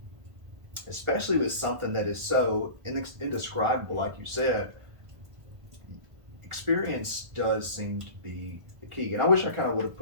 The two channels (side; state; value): left; late; 1.5 ms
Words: especially with something that is so indescribable, like you said, experience does seem to be the key. And I wish I kind of would have